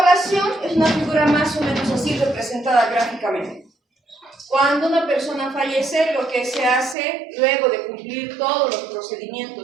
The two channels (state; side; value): drops out; left; at 7.0 s